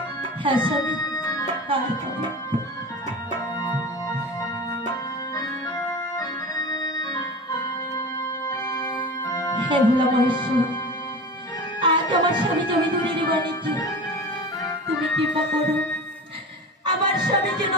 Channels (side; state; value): both; normal; correlation 0.31